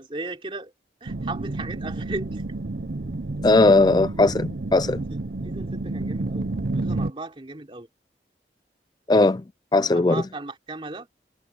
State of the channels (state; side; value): normal; both; correlation 0.63